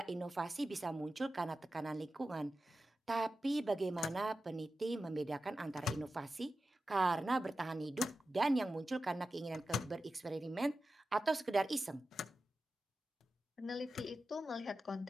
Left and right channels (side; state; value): both; normal; correlation 0.93